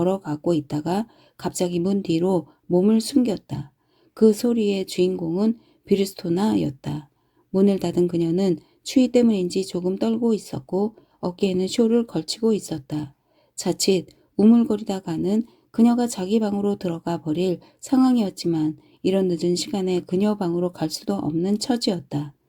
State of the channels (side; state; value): both; identical; correlation 1.00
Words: 있다가 갑자기 문 뒤로 몸을 숨겼다. 그 소리의 주인공은 비르스토나였다. 문을 닫은 그녀는 추위 때문인지 조금 떨고 있었고 어깨에는 쇼를 걸치고 있었다. 자칫 우물거리다가는 그녀가 자기 방으로 들어가 버릴 상황이었지만 이런 늦은 시간에 그녀 방으로 갈 수도 없는 처지였다.